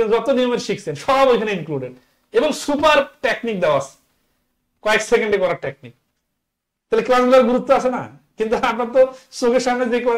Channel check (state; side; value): identical; both; correlation 1.00